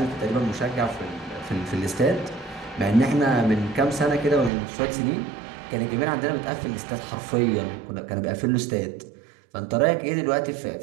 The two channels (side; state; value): left; drops out; at 4.5 s